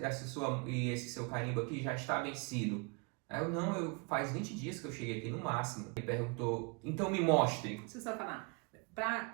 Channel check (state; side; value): quieter; left; 30.9 dB